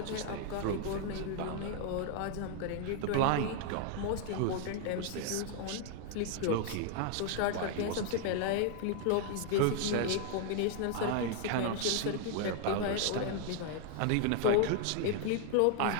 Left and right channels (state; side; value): different; both; correlation 0.00